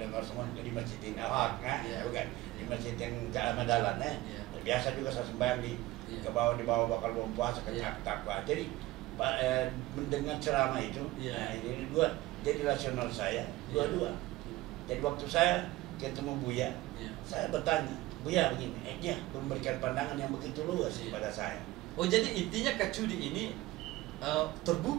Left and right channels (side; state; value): left; quieter; 18.1 dB